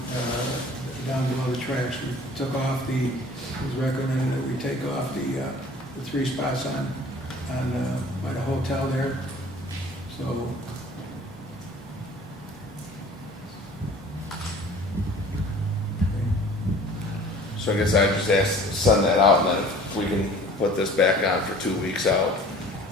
below the tracks. We took off it was recommended that we take off the 3 spots on by the hotel there. So I guess I just asked to send that out, and then if we can put this back on for 2 weeks out,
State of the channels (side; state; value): both; normal; correlation 0.48